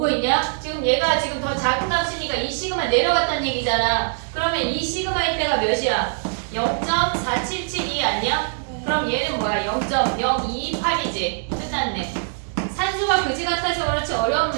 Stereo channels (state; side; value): silent; left; digital silence